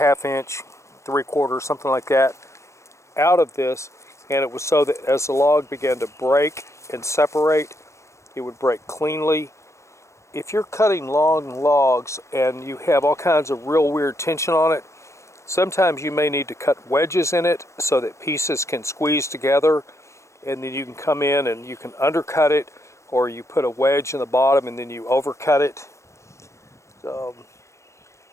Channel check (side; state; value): right; late; 0.14 ms